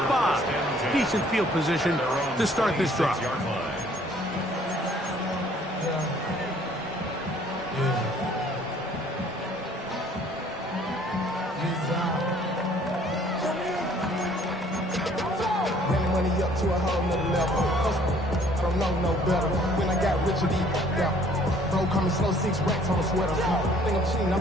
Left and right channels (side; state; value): both; normal; correlation 0.58